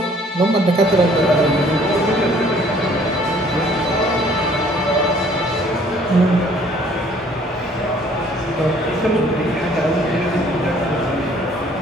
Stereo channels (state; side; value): normal; both; correlation 0.58